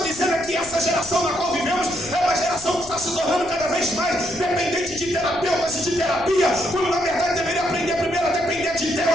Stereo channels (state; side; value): noise; left; rumble, 18 dB below the sound